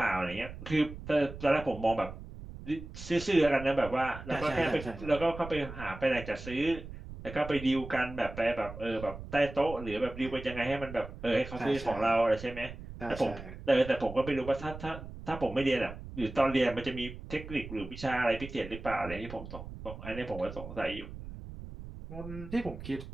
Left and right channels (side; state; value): right; noise; rumble, 12 dB below the sound